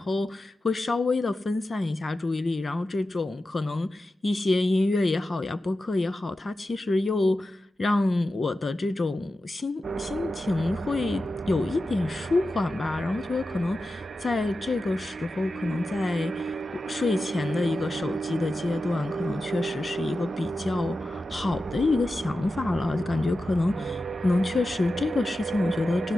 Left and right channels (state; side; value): normal; both; correlation 0.92